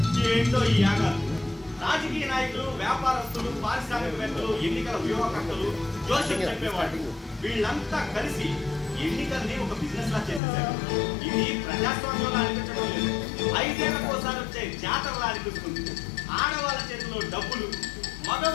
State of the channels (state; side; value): drops out; right; at 10.4 s